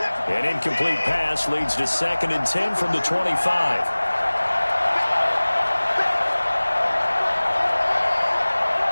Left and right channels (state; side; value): inverted; both; correlation -1.00